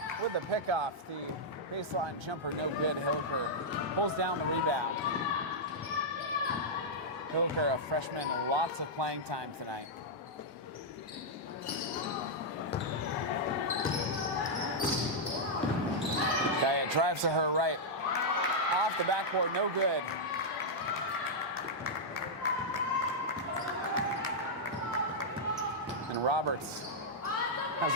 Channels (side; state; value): both; normal; correlation -0.06